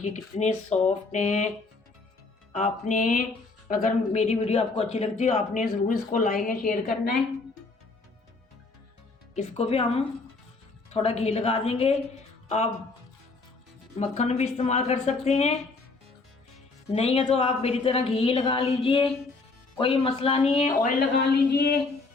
कितने सॉफ्ट हैं। आपने अगर मेरी वीडियो आपको अच्छी लगती है आपने ज़रूर इसको लाइक या शेयर करना है। इसको भी हम थोड़ा घी लगा देंगे। आप मक्खन भी इस्तेमाल कर सकते हैं, नहीं है तो आप मेरी तरह घी लगा लीजिए, कोई मसला नहीं है। ऑयल लगा लीजिए,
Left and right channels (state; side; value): quieter; right; 3.8 dB